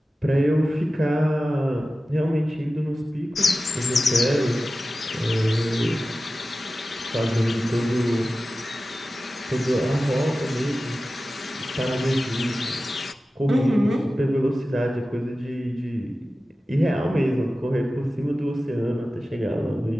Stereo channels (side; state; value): both; normal; correlation 0.95